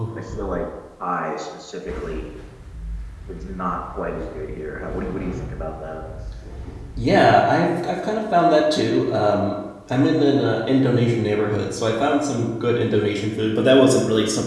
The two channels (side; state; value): both; identical; correlation 1.00